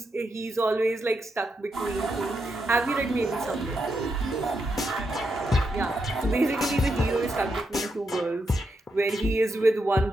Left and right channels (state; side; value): normal; both; correlation 0.83